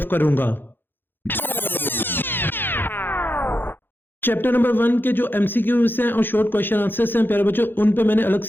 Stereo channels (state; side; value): late; right; 0.099 ms